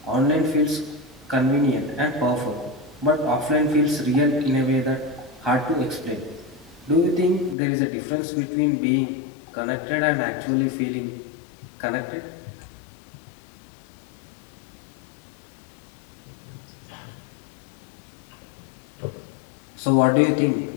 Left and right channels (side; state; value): right; drops out; at 7.6 s